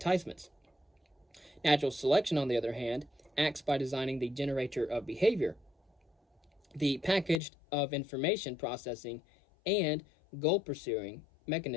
Natural selection, on the other hand, acts by designing the generator of behavior, the package of information processing, and goal-pursuing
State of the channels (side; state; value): right; drops out; at 7.4 s